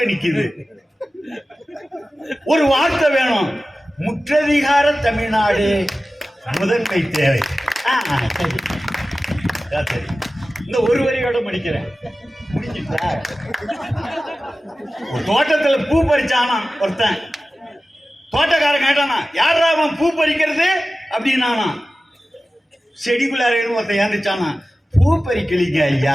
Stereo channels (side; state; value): both; normal; correlation 0.95